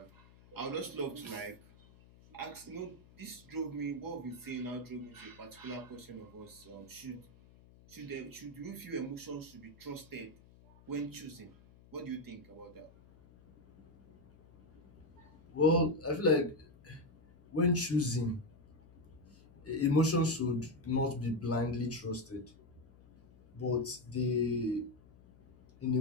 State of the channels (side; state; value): left; noise; hum, 24 dB below the sound